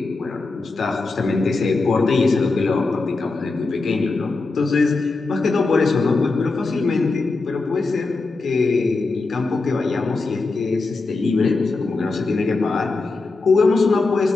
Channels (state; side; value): quieter; right; 3.7 dB